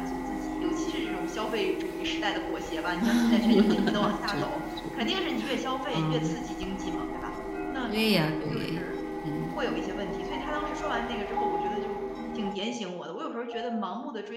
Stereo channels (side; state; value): both; identical; correlation 1.00